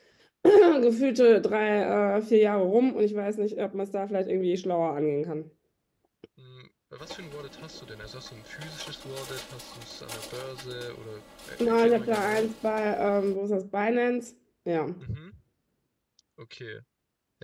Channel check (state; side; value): identical; both; correlation 1.00